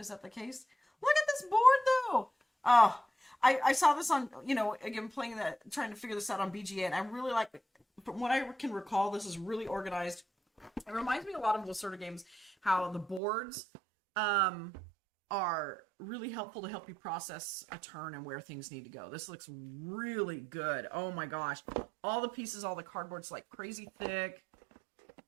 case? Look at this board, though. Oh, I saw this on, again, playing that, trying to figure this out on BGA, and I really like it. From what I can recall, this is really organized. It reminds me a lot of those sort of games, how the boards, are really helpful to help you process a turn and where things need to go. This looks really good. Oh my gosh. All the pieces, all the cardboard's like crazy thick.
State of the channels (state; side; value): drops out; left; at 13.2 s